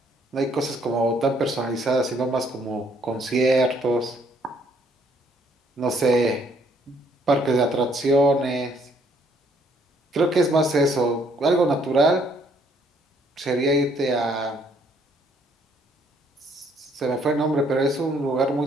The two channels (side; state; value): both; normal; correlation 0.66